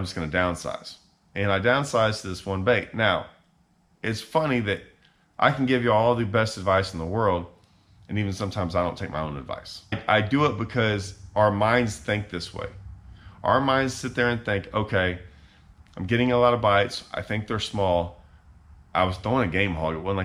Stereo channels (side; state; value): both; identical; correlation 1.00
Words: just going to downsize. And I downsized to this one bait. Now, it's funny that I can give you all the best advice in the world, and even sometimes I don't take my own advice. I do it because our minds think this way. Our minds sit there and think, okay, I'm getting a lot of bites. I think they're small. I was throwing a game hog. It wasn't